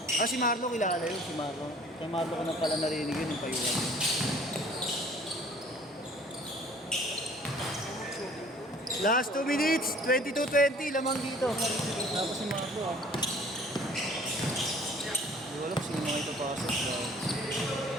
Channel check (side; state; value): both; normal; correlation 0.53